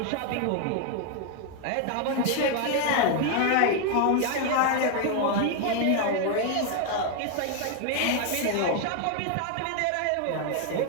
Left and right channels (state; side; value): different; both; correlation 0.01